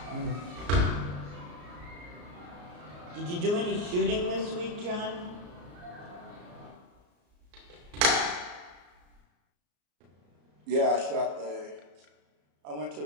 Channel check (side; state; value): left; late; 34 ms